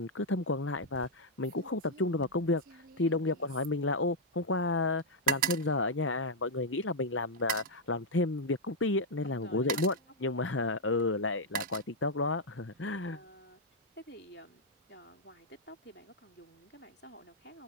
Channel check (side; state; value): both; normal; correlation -0.02